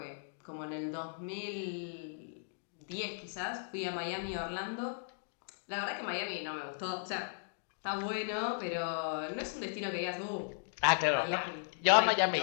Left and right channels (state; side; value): silent; right; digital silence